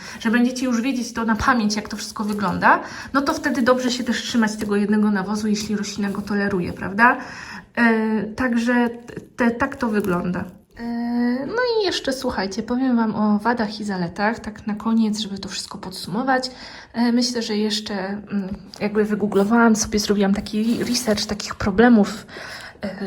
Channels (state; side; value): identical; both; correlation 1.00